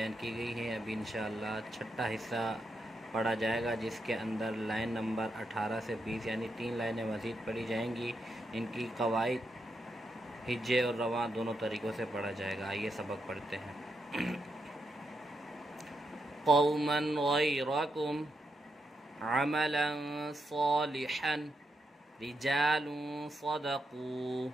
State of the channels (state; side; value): normal; both; correlation 0.83